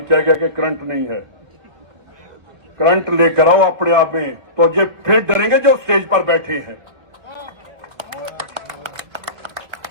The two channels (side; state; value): left; late; 1.8 ms